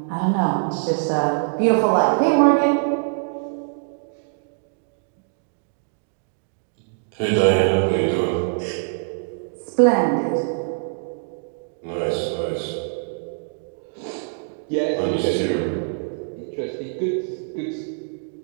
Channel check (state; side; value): silent; left; 63 dB below the other